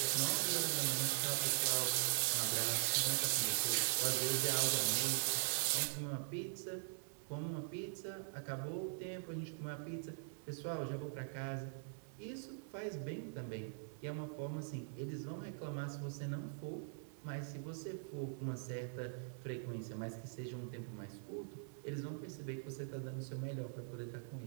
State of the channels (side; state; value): left; silent; digital silence